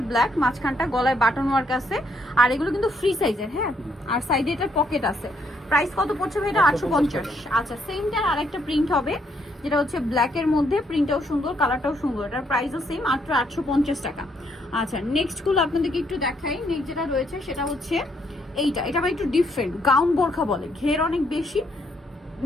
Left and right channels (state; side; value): normal; both; correlation 0.72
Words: ব্ল্যাক, মাঝখানটা গলায় বাটন ওয়ার্ক আছে। আর এগুলো কিন্তু ফ্রি সাইজের, হ্যাঁ, আর সাইডে এটার পকেট আছে। প্রাইস কত পড়ছে ভাই এটা? 850। আচ্ছা, সেমটার আরেকটা প্রিন্ট হবে, যেটা হচ্ছে ব্ল্যাকের মধ্যে, প্রিন্টটাও সুন্দর, কালারটাও সুন্দর, এটার প্রাইসও সেম, মাত্র 850 টাকা। আচ্ছা, নেক্সটগুলো আপনাদেরকে একটু দেখাই। নেক্সট যেটা রয়েছে সেটা হচ্ছে এইটা, এটা আবার একটু ডিফারেন্ট, গাউন বোরখা বলে, ঘের অনেক বেশি,